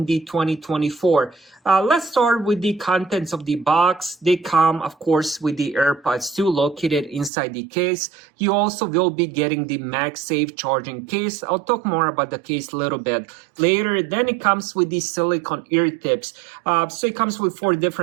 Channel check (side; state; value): left; drops out; at 7.3 s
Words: the 2024. Let's start with the contents of the box. They come of course with the AirPods 2 located inside the case. You also will be getting the MagSafe charging case. I'll talk more about the case a little bit later. Then it comes with the silicone ear tips. So it comes with 4